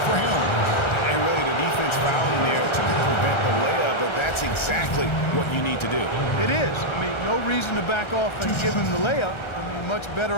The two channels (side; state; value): right; late; 1.3 ms